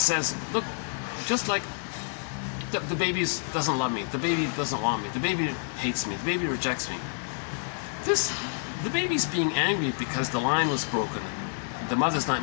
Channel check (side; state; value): right; silent; 58 dB below the other